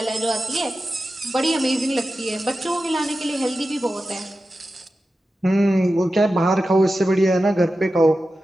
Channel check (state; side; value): normal; both; correlation 0.93